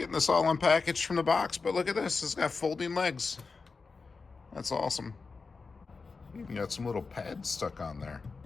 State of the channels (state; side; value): quieter; right; 4.5 dB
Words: this all unpackaged from the box, but look at this. It's got folding legs. That's awesome. Even got some little pads stuck on there.